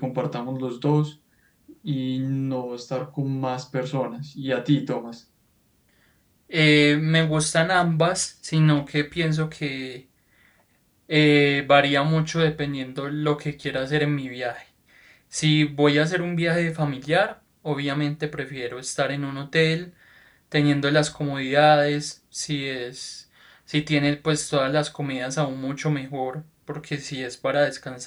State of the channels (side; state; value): both; identical; correlation 1.00